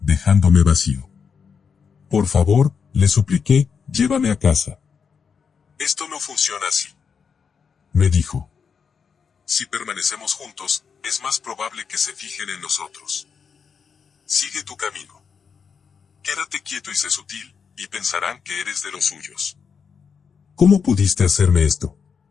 vacío. Por favor, le supliqué, llévame a casa. Esto no funciona así, me dijo. Si permanecemos juntos, es más probable que se fijen en nosotros. Sigue tu camino. Quédate quieto y sé sutil, y pensarán que eres de los suyos. ¿Cómo pudiste hacerme esto?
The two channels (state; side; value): quieter; right; 6.3 dB